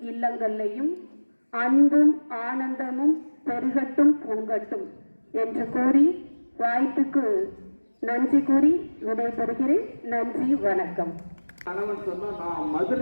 இல்லங்கள்லையும் அன்பும் ஆனந்தமும் பெருகட்டும் பொங்கட்டும் என்று கூறி வாய்ப்புக்கு நன்றி கூறி விடைபெறுகிறேன். நன்றி, வணக்கம். கணவன் சொன்னா நான்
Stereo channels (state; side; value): inverted; both; correlation -1.00